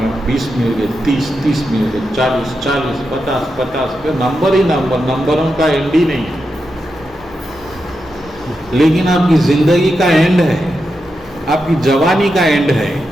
20 मिल गए, 30 मिल गए, 40, 50 पे नंबर ही नंबर, नंबरों का एंड ही नहीं है। लेकिन आपकी जिंदगी का एंड है, आपकी जवानी का एंड है,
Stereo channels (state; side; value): noise; left; hum, 26 dB below the sound